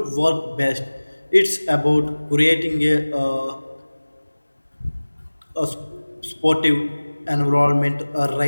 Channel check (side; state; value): both; inverted; correlation -1.00